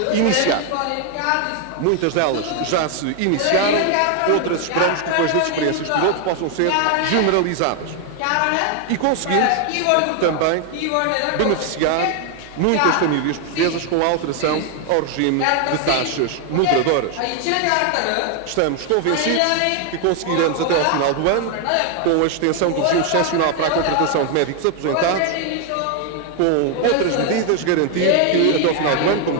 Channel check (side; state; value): both; different; correlation 0.01